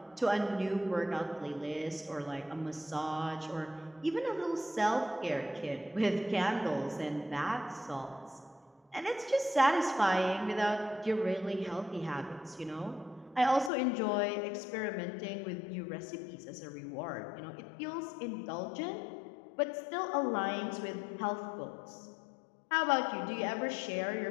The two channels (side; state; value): right; drops out; at 13.7 s